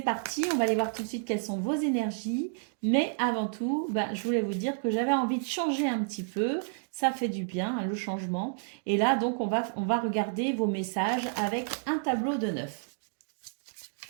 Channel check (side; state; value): left; silent; digital silence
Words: parti, on va aller voir tout de suite quelles sont vos énergies. Mais avant tout, je voulais vous dire que j'avais envie de changer un petit peu. Ça fait du bien, hein, le changement. Et là, donc, on va regarder vos messages avec un tableau de 9.